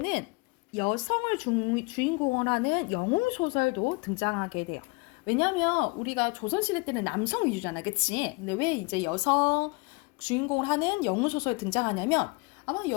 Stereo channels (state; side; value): quieter; right; 28.5 dB